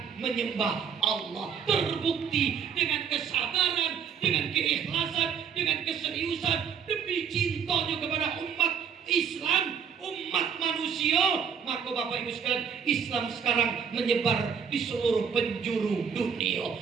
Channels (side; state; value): left; quieter; 7.2 dB